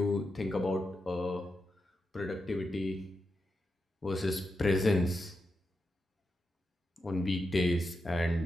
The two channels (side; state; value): both; normal; correlation 0.87